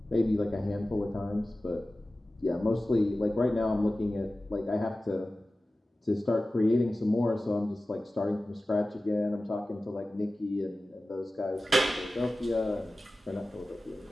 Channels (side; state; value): both; normal; correlation 0.96